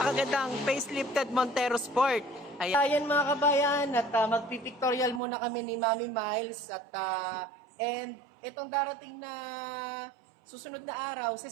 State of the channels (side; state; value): left; drops out; at 5.2 s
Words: facelifted Montero Sport. Ayan mga kabayan, at magpipictorial muna kami ni Mami Miles and itong darating na susunod na araw,